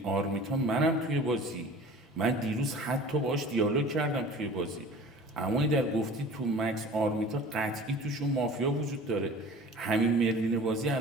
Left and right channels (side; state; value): both; normal; correlation 0.43